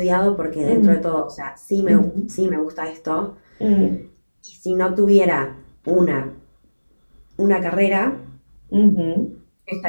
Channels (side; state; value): both; inverted; correlation -1.00